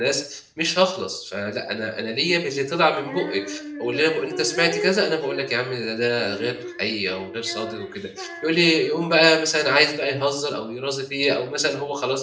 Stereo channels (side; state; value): both; identical; correlation 1.00